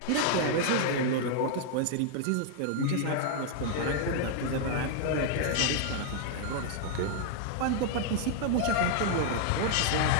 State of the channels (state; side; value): different; both; correlation 0.00